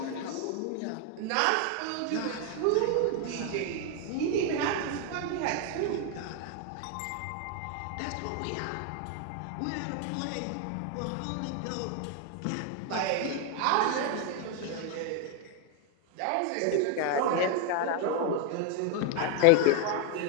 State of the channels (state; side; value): different; both; correlation 0.01